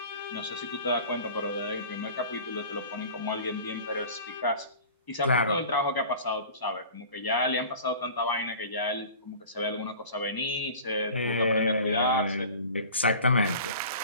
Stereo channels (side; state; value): both; inverted; correlation -0.41